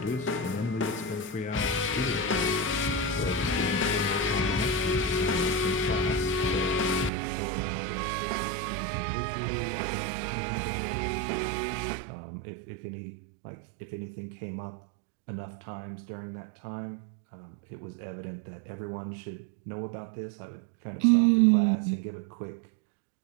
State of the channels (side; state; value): left; drops out; at 7.1 s